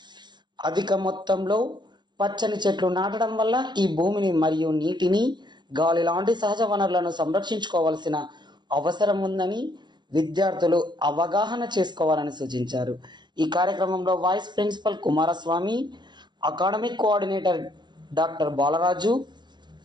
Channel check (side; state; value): left; late; 0.21 ms